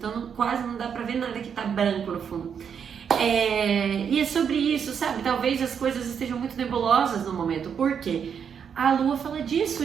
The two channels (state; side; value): quieter; left; 7.4 dB